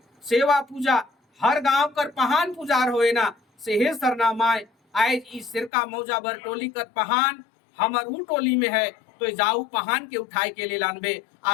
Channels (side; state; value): right; drops out; at 5.7 s